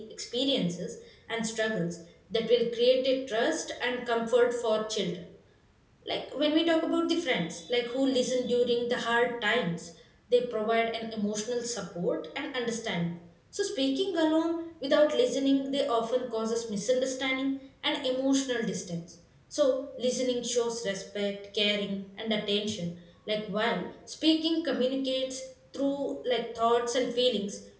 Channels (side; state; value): both; identical; correlation 1.00